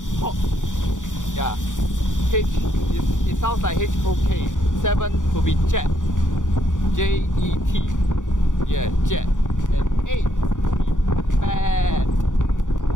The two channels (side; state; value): right; late; 0.86 ms